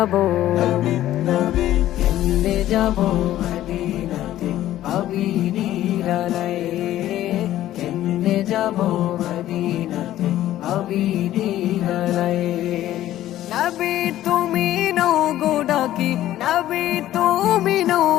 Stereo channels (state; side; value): quieter; right; 13.5 dB